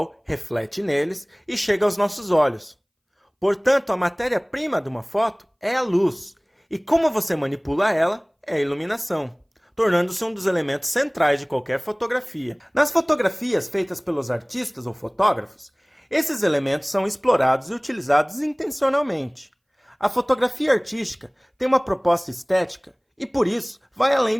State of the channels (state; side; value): identical; both; correlation 1.00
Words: reflete neles e chega aos nossos olhos. Portanto, a matéria-prima de uma foto é a luz, e como você manipula ela é a iluminação, tornando-se um dos elementos centrais de qualquer fotografia. Nas fotografias feitas pelos artistas ou fotógrafos, esses elementos são explorados e utilizados intencionalmente. A fotografia artística tem uma proposta estética e, por isso, vai além